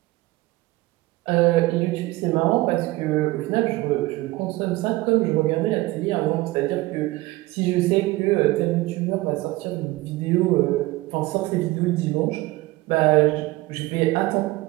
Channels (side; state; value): left; quieter; 19.6 dB